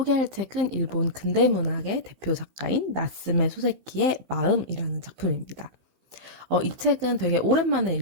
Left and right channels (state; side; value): late; left; 15 ms